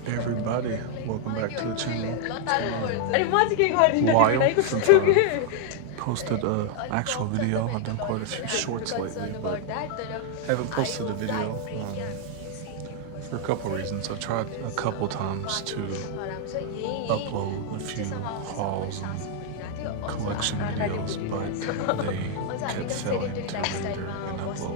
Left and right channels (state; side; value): different; both; correlation 0.00